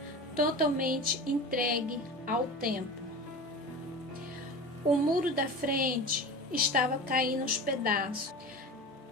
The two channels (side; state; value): both; normal; correlation 0.32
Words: totalmente entregue ao tempo. O muro da frente estava caindo aos pedaços.